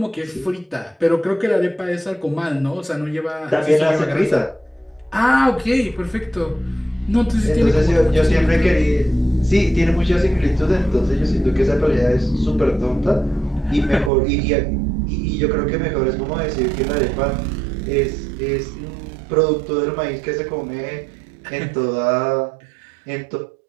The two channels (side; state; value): left; drops out; at 14.1 s